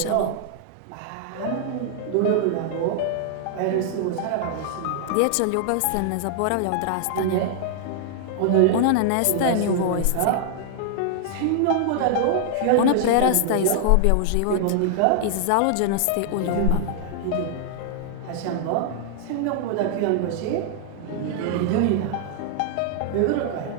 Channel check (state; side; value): different; both; correlation -0.01